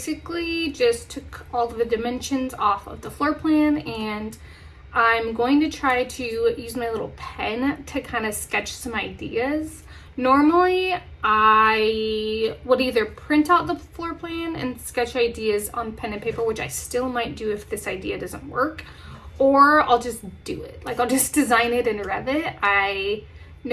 just took all of the dimensions off of the floor plan, and I'm going to try to use my little pen to kind of sketch some ideas. Normally I would either print out the floor plan and sketch ideas on pen and paper, which I still might do if this idea doesn't work, or I'll just do it. Like, I'll just design it in Revit. I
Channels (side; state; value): both; identical; correlation 1.00